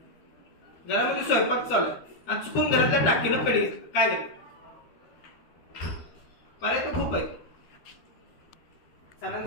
घरामध्ये स्वयंपाक चालू आहे आणि चुकून घरातल्या टाकीनं पेढी घेतलं काय झालं पर्याय तर खूप आहे.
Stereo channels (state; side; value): late; right; 12 ms